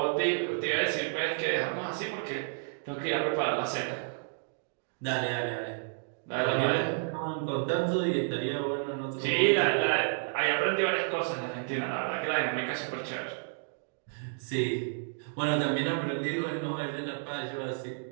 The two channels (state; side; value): silent; left; digital silence